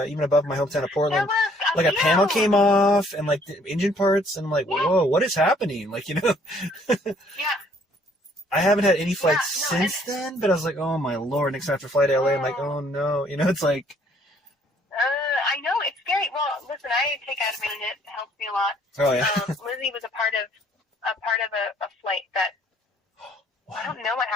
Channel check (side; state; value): both; normal; correlation 0.62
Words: even above my hometown of Portland, like, a panel came off and, like, the engine parts, and I'm like, whoa, what is happening? Like, you know? Yeah. I haven't had any flights since then, but I was like, oh, my Lord. Next after flight to LA, I'm like, oh, no. You know, it's like... I know, it's scary. Well, listen, I take Ativan and it helps me a lot. Oh, yeah. Lizzie was a part of a flight that... I don't know what